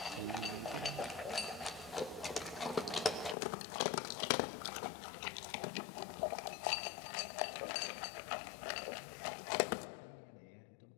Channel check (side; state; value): right; drops out; at 3.4 s